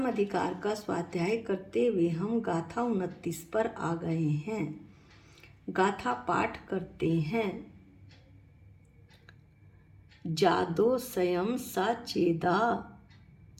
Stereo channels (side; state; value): both; identical; correlation 1.00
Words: अधिकार का स्वाध्याय करते हुए हम गाथा 29 पर आ गए हैं। गाथा पाठ करते हैं। जादो स्वयं साचेदा